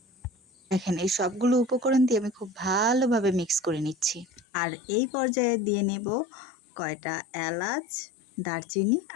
দেখেন এই সবগুলো উপকরণ দিয়ে আমি খুব ভালোভাবে মিক্স করে নিচ্ছি। আর এই পর্যায়ে দিয়ে নেব কয়টা এলাচ, দারচিনি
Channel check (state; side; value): drops out; right; at 4.5 s